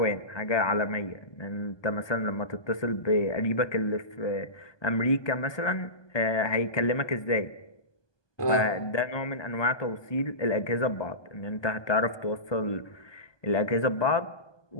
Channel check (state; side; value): late; right; 1.2 ms